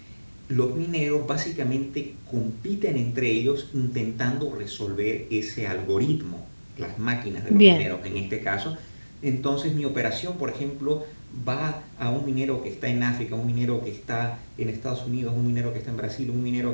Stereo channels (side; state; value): both; inverted; correlation -1.00